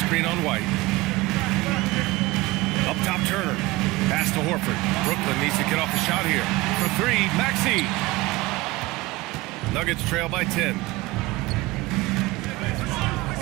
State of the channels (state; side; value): quieter; left; 20.6 dB